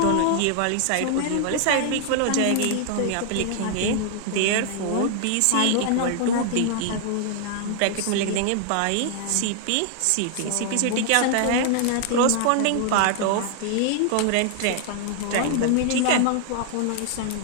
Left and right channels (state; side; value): different; both; correlation 0.00